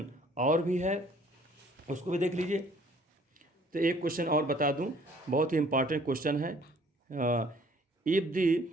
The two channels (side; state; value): both; normal; correlation 0.57